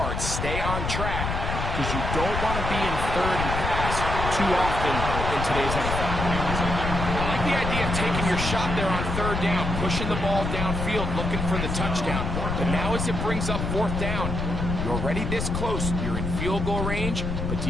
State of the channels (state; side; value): noise; left; rumble, 2 dB below the sound